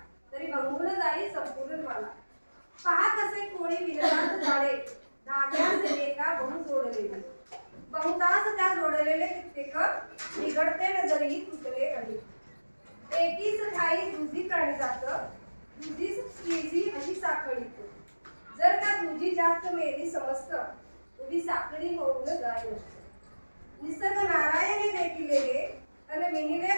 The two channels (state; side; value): inverted; both; correlation -1.00